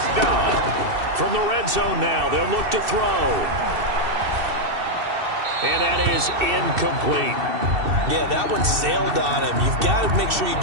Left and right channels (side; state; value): left; late; 2.7 ms